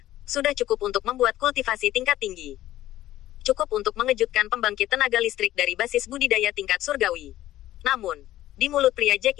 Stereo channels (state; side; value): quieter; right; 14.3 dB